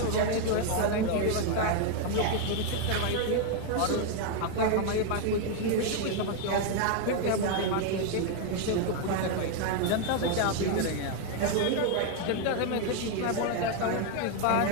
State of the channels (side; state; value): both; different; correlation 0.01